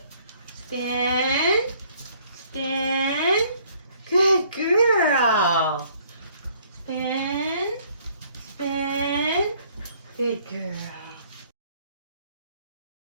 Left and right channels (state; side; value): inverted; both; correlation -0.61